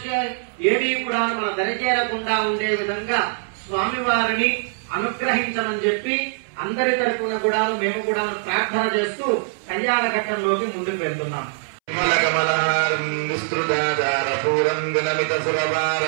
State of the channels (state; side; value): silent; left; 64 dB below the other